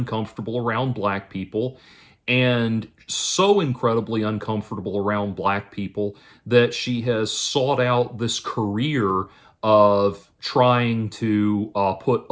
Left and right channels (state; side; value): identical; both; correlation 1.00